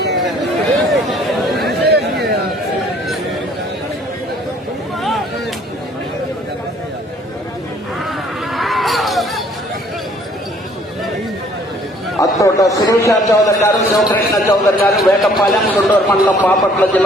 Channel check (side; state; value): both; normal; correlation 0.59